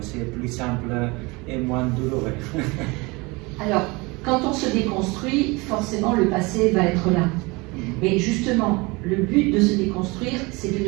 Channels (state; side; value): quieter; left; 25.3 dB